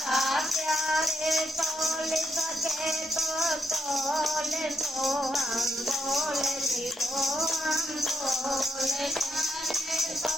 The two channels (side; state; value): both; normal; correlation 0.79